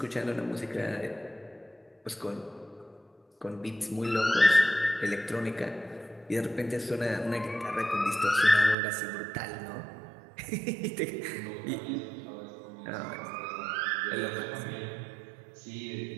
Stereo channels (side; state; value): left; drops out; at 8.8 s